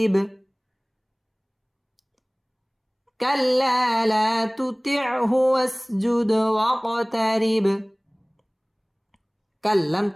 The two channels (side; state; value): both; identical; correlation 1.00